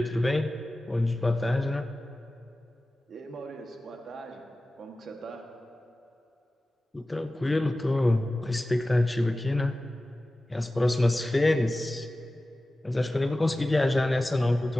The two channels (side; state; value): both; normal; correlation 0.96